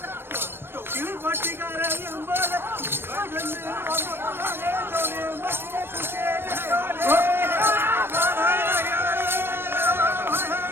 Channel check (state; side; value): late; left; 0.11 ms